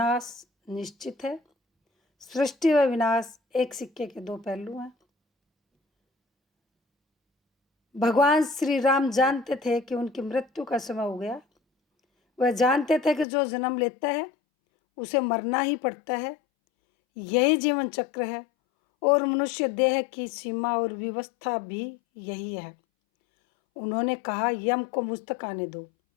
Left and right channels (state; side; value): drops out; right; at 13.2 s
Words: निश्चित है। सृष्टि व विनाश एक सिक्के के दो पहलू हैं। भगवान श्री राम जानते थे कि उनकी मृत्यु का समय हो गया। वह जानते थे कि जो जन्म लेता है उसे मरना ही पड़ता है। यही जीवन चक्र है और मनुष्य देह की सीमा और व्यवस्था भी यही है। उन्होंने कहा, यम को मुझ तक आने दो,